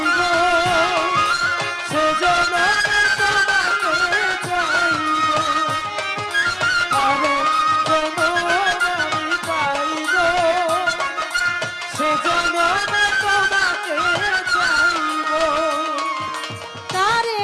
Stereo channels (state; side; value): identical; both; correlation 1.00